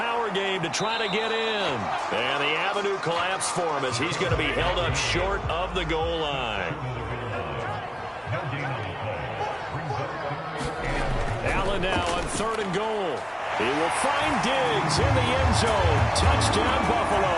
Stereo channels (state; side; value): identical; both; correlation 1.00